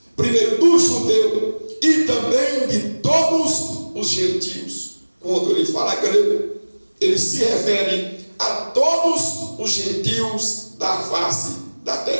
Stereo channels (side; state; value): both; inverted; correlation -1.00